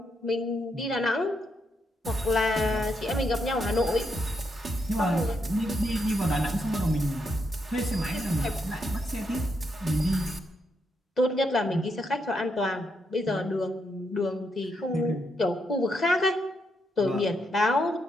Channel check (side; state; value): both; normal; correlation 0.79